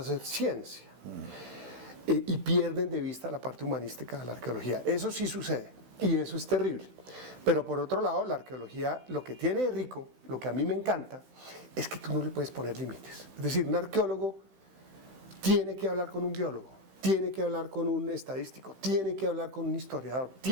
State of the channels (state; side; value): late; left; 16 ms